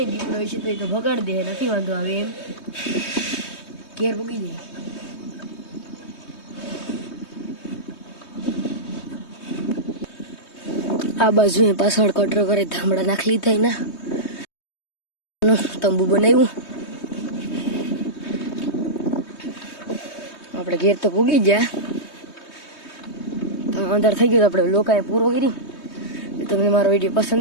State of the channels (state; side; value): late; right; 3.2 ms